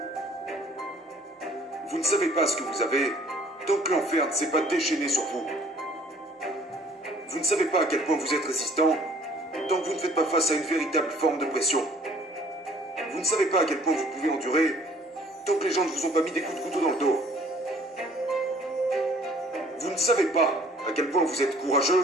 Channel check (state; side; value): normal; both; correlation 0.56